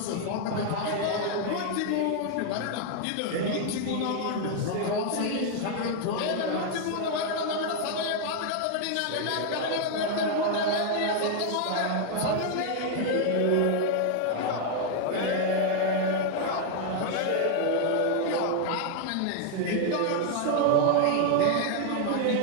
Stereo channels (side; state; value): both; different; correlation 0.00